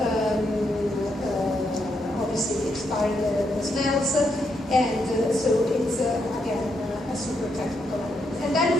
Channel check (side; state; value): both; normal; correlation 0.79